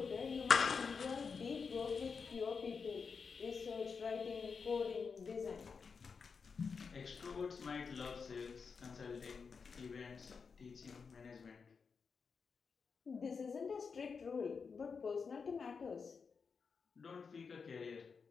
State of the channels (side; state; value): right; quieter; 5.5 dB